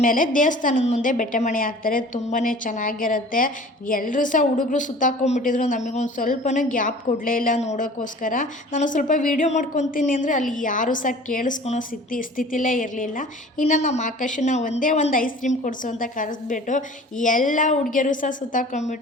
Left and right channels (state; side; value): normal; both; correlation 0.45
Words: ದೇವಸ್ಥಾನದ ಮುಂದೆ ಬೆಟ್ಟೆ ಮಣೆ ಹಾಕ್ತಾರೆ. ತುಂಬಾ ಚೆನ್ನಾಗಿರುತ್ತೆ. ಎಲ್ಲರೂ ಸಹ ಹುಡುಗರು ಸುತ್ತಾಕೊಂಡ್ಬಿಟ್ಟಿದ್ರು. ನಮಗೊಂದು ಸ್ವಲ್ಪನೂ ಗ್ಯಾಪ್ ಕೊಡಲೇ ಇಲ್ಲ ನೋಡೋಕ್ಕೋಸ್ಕರ. ನಾನು ಸ್ವಲ್ಪ ವೀಡಿಯೋ ಮಾಡ್ಕೊತೀನಿ ಅಂದರೆ ಅಲ್ಲಿ ಯಾರೂ ಸಹ ಕೇಳಿಸ್ಕೊಳೋ ಸ್ಥಿತಿಲೇ ಇರಲಿಲ್ಲ. ಇನ್ನು ನಮ್ಮ ಆಕಾಶನ ಒಂದೇ ಒಂದು ಐಸ್ ಕ್ರೀಮ್ ಕೊಡಿಸು ಅಂತ ಕರೆಸ್ಬಿಟ್ಟು ಎಲ್ಲ ಹುಡುಗಿಯರು ಸಹ